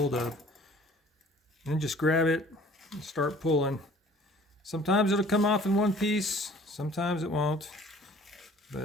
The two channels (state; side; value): normal; both; correlation 0.52